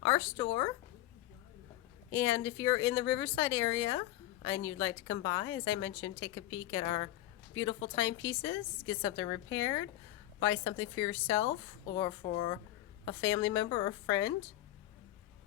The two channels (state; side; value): quieter; right; 14.9 dB